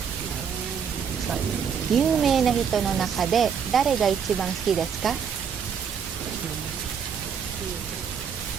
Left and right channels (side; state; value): left; quieter; 7.1 dB